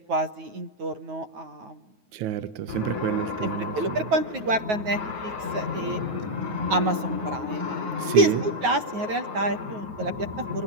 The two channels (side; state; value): left; late; 9.4 ms